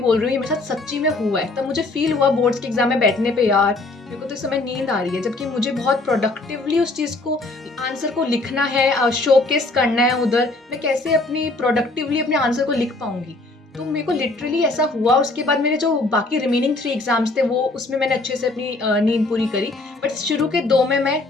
बोल रही हूँ, ये मेरे साथ सच्ची में हुआ है। तब मुझे फील हुआ बोर्ड्स के एग्जाम में बैठने पे, यार मेरे को तो इस समय नींद आ रही है, जबकि मुझे बहुत प्रोडक्टिवली उस चीज़ को, आंसर को लिखना है, शोकेस करना है उधर। मैं कैसे अपनी प्रोडक्टिवली अपने आंसर को लिख पाऊंगी? तो मेरे को लिटरली ऐसा हुआ। उसके बाद मेरे जो बाकी रिमेनिंग 3 एग्जाम्स थे वो, उसमें मैंने अच्छे से अपनी नींद पूरी करी, बट शुरू के 2 में मैं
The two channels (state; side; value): quieter; right; 3.1 dB